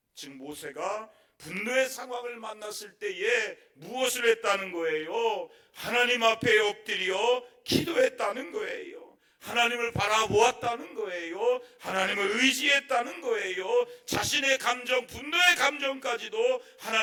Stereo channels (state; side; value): identical; both; correlation 1.00